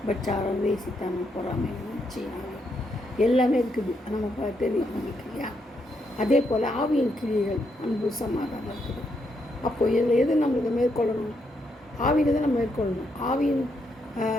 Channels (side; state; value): both; normal; correlation 0.78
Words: பச்சாரம், வேசித்தனம், பொறாமை, சீனாவை எல்லாமே இருக்குது, நமக்கு தெரியும் நம்மளுக்கு இல்லையா. அதே போல் ஆவியின் கிரியைகள் அன்பு, சமாதானம் இருக்குது. அப்போது இதில் எது நம்மளுக்கு மேற்கொள்ளணும்? ஆவியில் தான் நம்ம மேற்கொள்ளணும். ஆவியின்